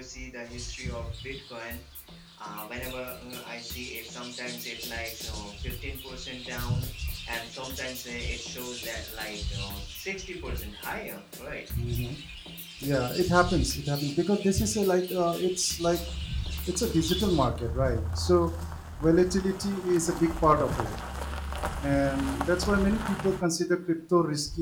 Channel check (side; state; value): both; identical; correlation 1.00